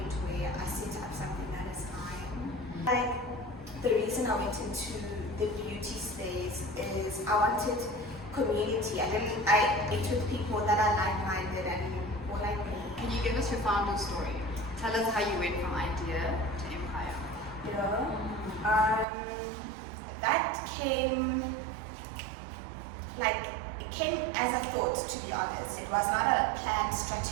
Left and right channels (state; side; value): drops out; left; at 19.1 s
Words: where I set up something that is mine. Like, the reason I went into the beauty space is I wanted community. I ate with people that are like-minded and more like me. Can you give us your founder story? Tell us how you went from idea to empire. That came, like, it came as a thought, to be honest. It was not a planned